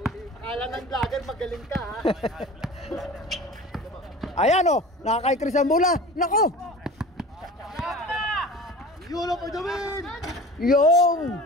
Akala ng vlogger magaling ka ha. Ayan oh, nakakaikris ang bola. Nako! Yulo for the win! Yung!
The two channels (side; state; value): both; normal; correlation 0.38